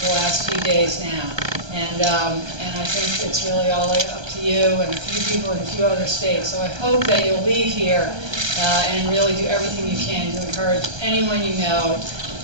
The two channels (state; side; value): late; left; 1.3 ms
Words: last few days now. And I think it's really all up to you and a few people in a few other states. So I hope that you'll leave here and really do everything you can to encourage anyone you know